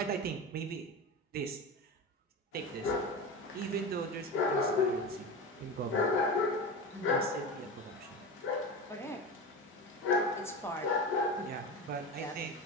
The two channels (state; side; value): normal; both; correlation 0.26